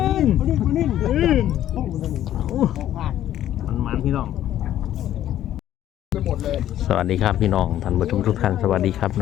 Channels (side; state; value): right; quieter; 12.1 dB